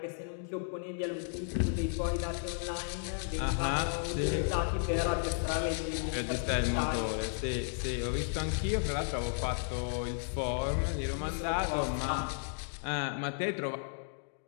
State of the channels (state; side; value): silent; right; digital silence